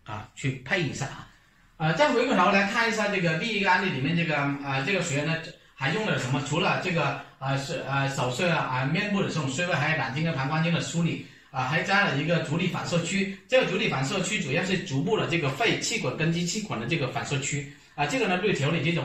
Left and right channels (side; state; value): both; identical; correlation 1.00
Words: 配一下再回过头来看一下这个第一个案例里面这个学员呢还用了什么？除了这个手术面部的这种穴位，还有胆经跟膀胱经的梳理还加了一个足底反射区。这个足底反射区主要是足部的这个肺气管、根基气管的这个反射区这个呢对调理这种